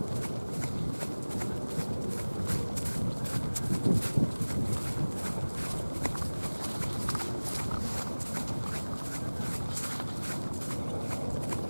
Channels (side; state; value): both; inverted; correlation -1.00